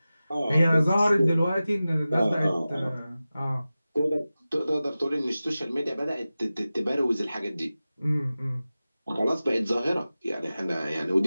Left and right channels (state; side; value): inverted; both; correlation -0.95